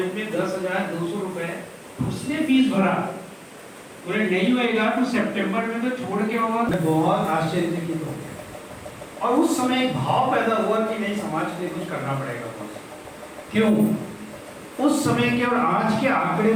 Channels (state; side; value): identical; both; correlation 1.00